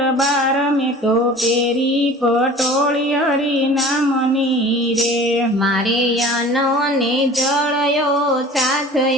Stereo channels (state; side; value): normal; both; correlation 0.43